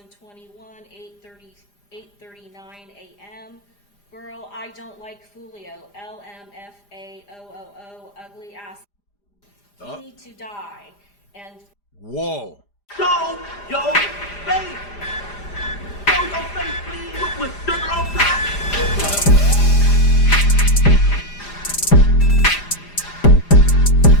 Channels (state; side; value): late; right; 5.0 ms